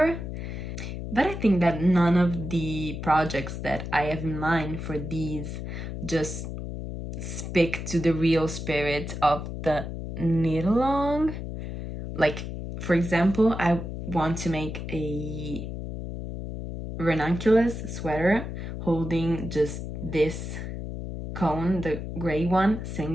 But I think that none of the projects that I have in mind for these just speak to the real spirit of the knit-along. Like, for example, I want to make a ranunculus sweater holding just this cone, the gray one,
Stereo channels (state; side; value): noise; left; hum, 6 dB below the sound